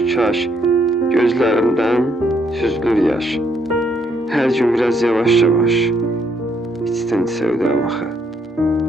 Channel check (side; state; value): both; normal; correlation 0.72